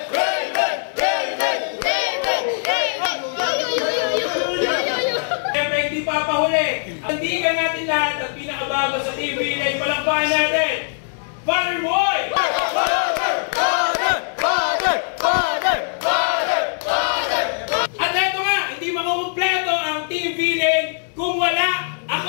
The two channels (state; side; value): silent; right; digital silence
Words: Siyempre hindi papahuli. Tandigan natin lahat at pinakabago sa TV Leg. Palakpakan natin! Father Boy! At eto nga, hindi makukumpleto ang Team V-Leg kung wala